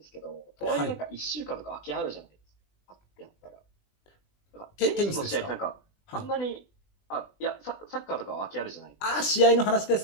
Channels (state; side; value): late; right; 20 ms